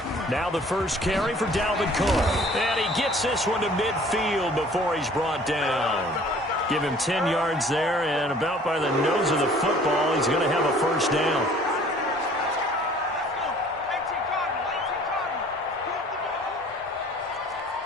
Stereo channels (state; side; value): normal; both; correlation 0.53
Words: Now the first carry for Dalvin Cook. And he gets this one to midfield before he's brought down. Give him 10 yards there, and about by the nose of the football, he's going to have a first down.